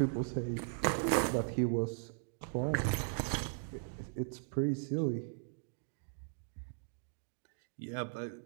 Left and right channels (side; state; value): left; silent; digital silence